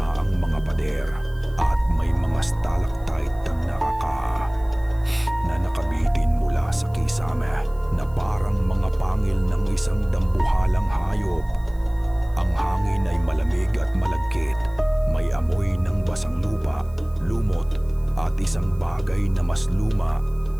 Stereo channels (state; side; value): noise; right; hiss, 29 dB below the sound